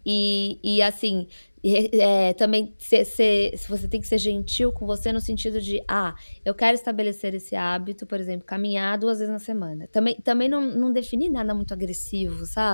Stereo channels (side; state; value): both; inverted; correlation -1.00